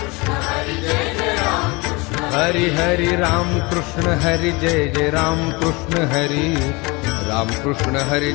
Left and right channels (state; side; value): quieter; right; 25.9 dB